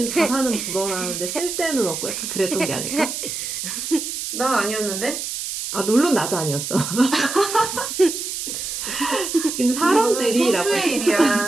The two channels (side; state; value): right; noise; hiss, 5 dB below the sound